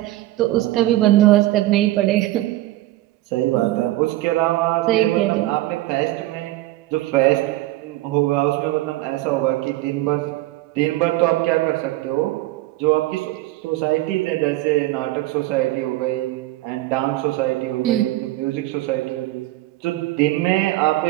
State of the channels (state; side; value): quieter; left; 17.0 dB